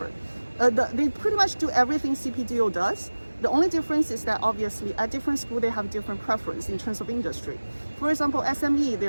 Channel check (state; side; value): inverted; both; correlation -1.00